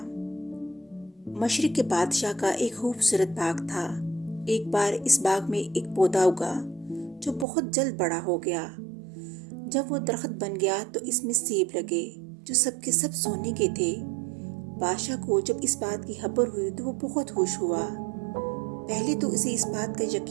مشرق کے بادشاہ کا ایک خوبصورت باغ تھا۔ ایک بار اس باغ میں ایک پودا اگا جو بہت جلد بڑا ہو گیا۔ جب وہ درخت بن گیا تو اس میں سیب لگے جو سب کے سب سونے کے تھے۔ بادشاہ کو جب اس بات کی خبر ہوئی تو وہ بہت خوش ہوا۔ پہلے تو اسے اس بات کا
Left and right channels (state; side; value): drops out; left; at 7.5 s